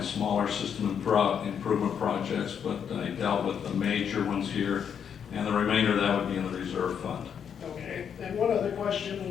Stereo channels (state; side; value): quieter; right; 7.8 dB